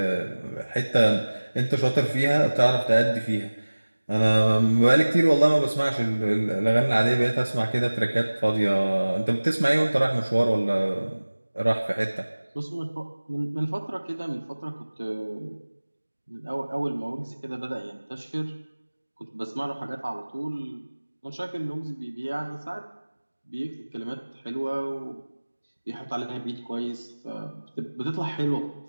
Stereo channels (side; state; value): both; inverted; correlation -1.00